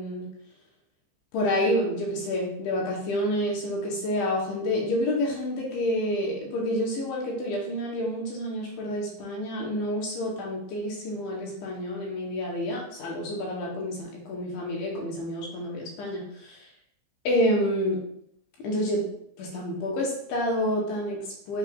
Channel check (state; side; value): late; right; 15 ms